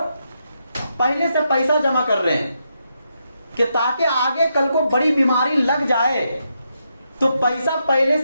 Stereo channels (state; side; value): inverted; both; correlation -0.82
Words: پہلے سے پیسہ جمع کر رہے ہیں کہ تاکہ آگے کل کو بڑی بیماری لگ جائے تو پیسہ پہلے